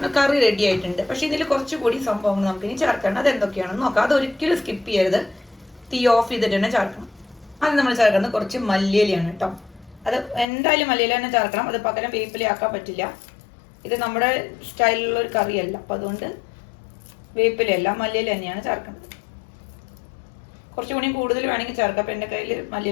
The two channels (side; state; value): right; drops out; at 10.5 s